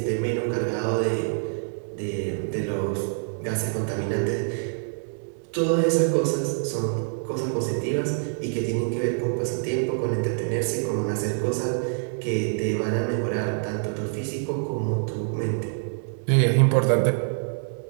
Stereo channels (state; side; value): silent; left; digital silence